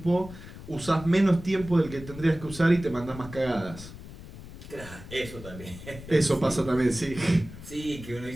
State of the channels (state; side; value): noise; left; rumble, 14 dB below the sound